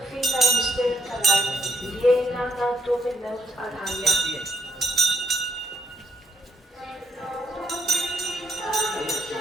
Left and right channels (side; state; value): both; normal; correlation 0.77